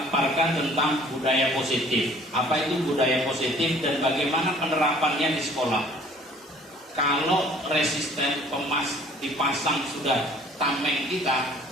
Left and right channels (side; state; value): both; normal; correlation 0.53